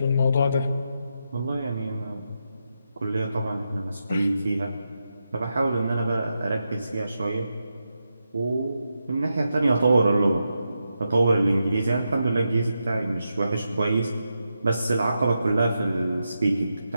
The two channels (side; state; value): both; inverted; correlation -0.86